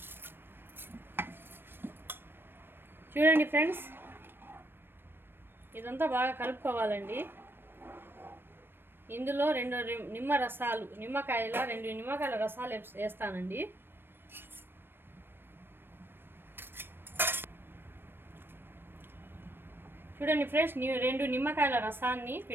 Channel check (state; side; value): late; left; 0.099 ms